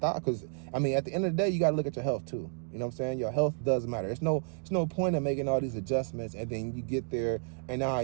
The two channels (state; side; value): silent; left; digital silence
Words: Because, at the end of the day, you got to look at your health, too. You know what I'm saying? Your health does matter. There's no point in making all these adjustments and then you get there and now